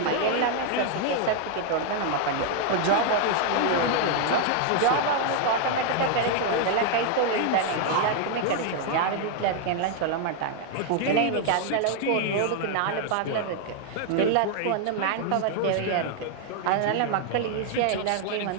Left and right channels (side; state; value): both; different; correlation 0.00